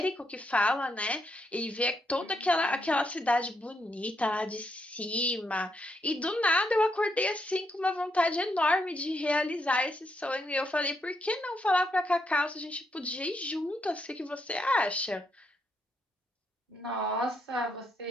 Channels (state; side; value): normal; both; correlation 0.78